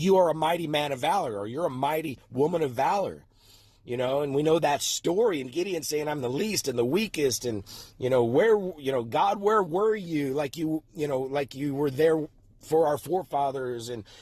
are a mighty man of valor, or you're a mighty woman of valor, and we know that story, and Gideon saying, I'm the least and the weakest, and, God, where were you? Like you were there for our forefathers. And,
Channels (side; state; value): both; identical; correlation 1.00